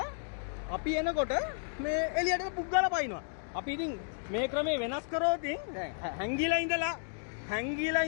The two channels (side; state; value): right; silent; digital silence